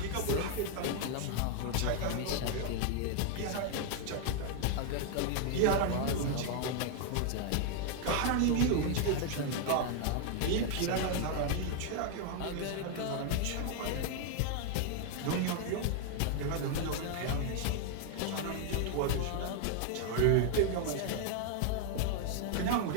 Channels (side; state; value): both; different; correlation 0.00